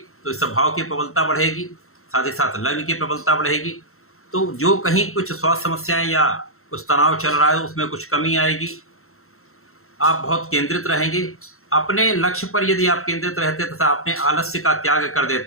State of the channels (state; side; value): late; right; 0.62 ms